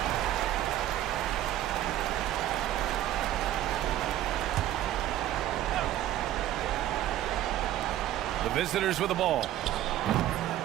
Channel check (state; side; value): quieter; left; 12.9 dB